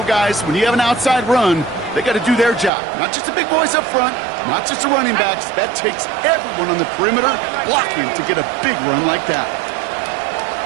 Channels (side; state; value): left; drops out; at 2.7 s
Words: guys, when you have an outside run, they got to do their job. Not just the big boys up front, not just the running backs. That takes everyone on the perimeter blocking to get a big run like that.